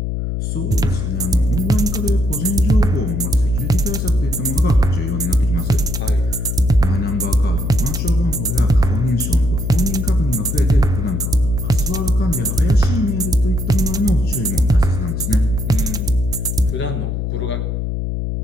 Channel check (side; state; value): left; noise; hum, 2 dB below the sound